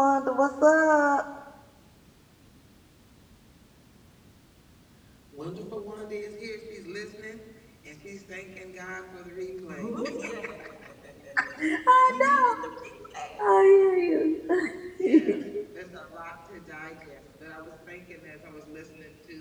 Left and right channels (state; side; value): identical; both; correlation 1.00